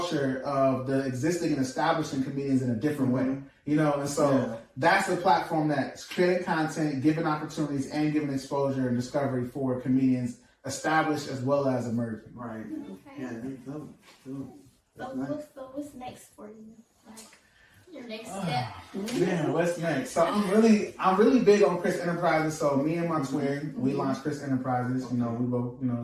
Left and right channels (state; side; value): identical; both; correlation 1.00